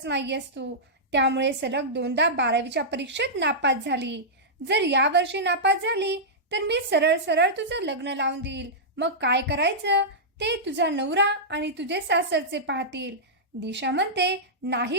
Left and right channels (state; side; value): normal; both; correlation -0.12